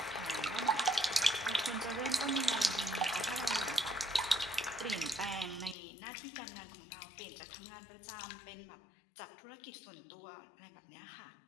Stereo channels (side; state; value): right; drops out; at 5.8 s